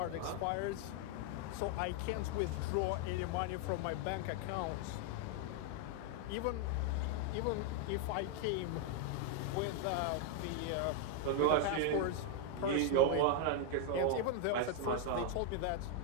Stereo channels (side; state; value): both; different; correlation 0.00